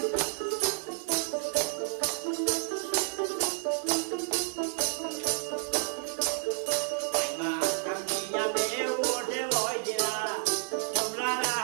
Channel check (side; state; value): left; silent; 57 dB below the other